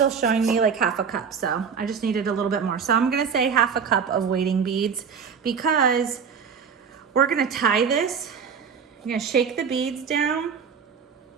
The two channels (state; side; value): quieter; left; 6.4 dB